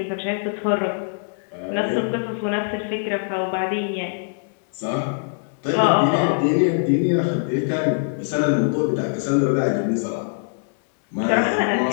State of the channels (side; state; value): right; silent; 64 dB below the other